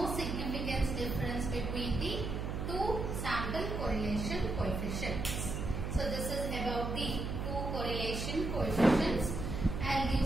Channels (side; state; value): right; noise; hum, 3 dB below the sound